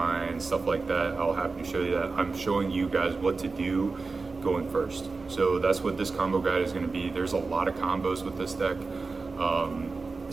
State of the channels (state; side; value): quieter; left; 4.0 dB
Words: stuff like that, I'll happy to show you that. I'm showing you guys what to do going first. So that's what this combo guide is going to be. There's a lot of combos with this deck.